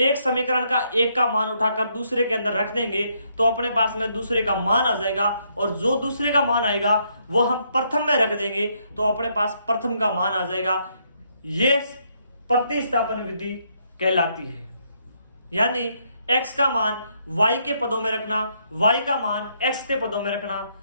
समीकरण का एक का मान उठाकर दूसरे के अंदर रख देंगे तो अपने पास में दूसरे का मान आ जाएगा, और जो दूसरे का मान आएगा वो हम प्रथम में रख देंगे तो अपने पास प्रथम का मान आ जाएगा। ये प्रतिस्थापन विधि कहलाती है। यानी x का मान y के पदों में रखना, y का मान x के पदों में रखना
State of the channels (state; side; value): inverted; both; correlation -0.73